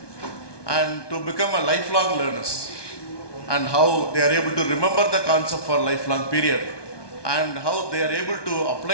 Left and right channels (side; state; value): right; late; 1.2 ms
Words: and to become a lifelong learners, and how they are able to remember the concept for a lifelong period, and how they are able to